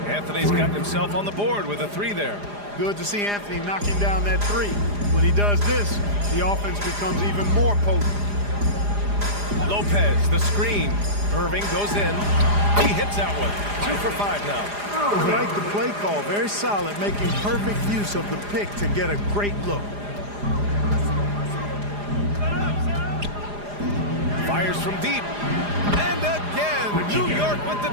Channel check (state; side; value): late; left; 4.9 ms